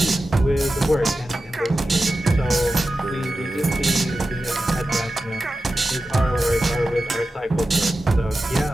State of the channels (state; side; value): normal; both; correlation 0.93